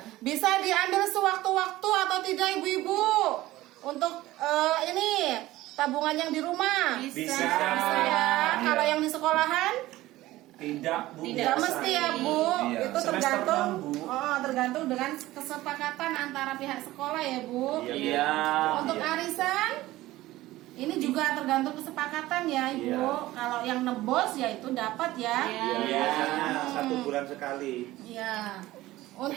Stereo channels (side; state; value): left; quieter; 16.9 dB